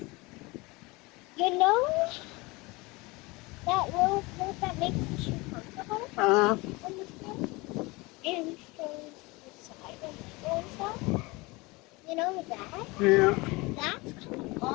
You know that little coat that makes the shoe comfortable Uh-huh. on the foot and shows the side and middle and stuff? You know that? Yeah. That's coming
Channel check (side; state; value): right; quieter; 24.2 dB